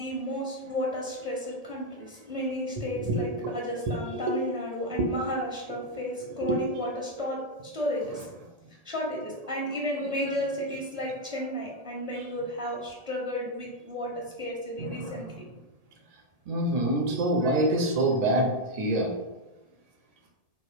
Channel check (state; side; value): late; left; 1.7 ms